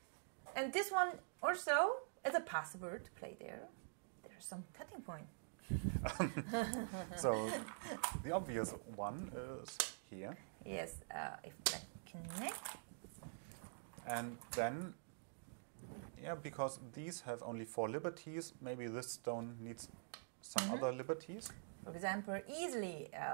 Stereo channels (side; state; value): left; silent; digital silence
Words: And this one also is a possible to play there. There's some cutting point. So the obvious one is here. Yes, if black connect. And then, because these have only 4 liberties, maybe this stone needs some other liberties. For example, easily